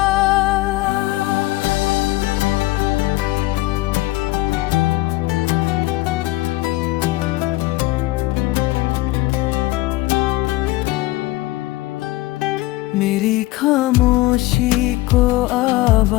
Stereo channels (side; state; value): right; quieter; 18.8 dB